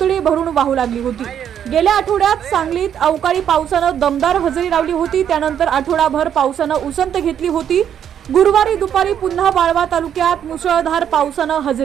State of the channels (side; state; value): left; quieter; 9.2 dB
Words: भरून वाहू लागली होती। गेल्या आठवड्यात सांगलीत अवकाळी पावसाने दमदार हजेरी लावली होती। त्यानंतर आठवडाभर पावसाने उसंत घेतली होती। गुरुवारी दुपारी पुन्हा वाळवा तालुक्यात मुसळधार पावसाने